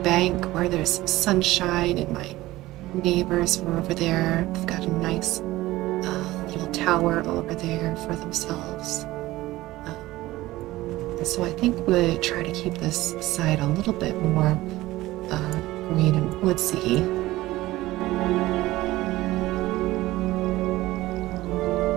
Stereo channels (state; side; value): quieter; left; 17.5 dB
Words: where there's some sunshine and my neighbors are over there. They've got a nice little tower over there for themselves. So I think we'll try to keep this side a little bit more green and woodsy.